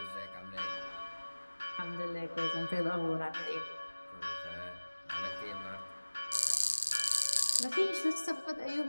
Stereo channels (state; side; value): inverted; both; correlation -1.00